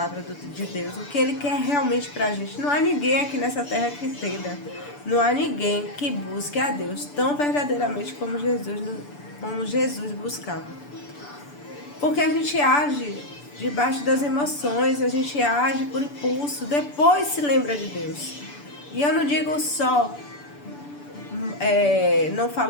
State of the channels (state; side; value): late; right; 6.9 ms